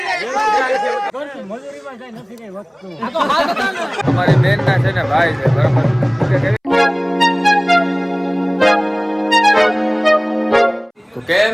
અમારી બેન ના છે ને ભાઈ છે, બરાબર. તો કેમ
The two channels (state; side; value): identical; both; correlation 1.00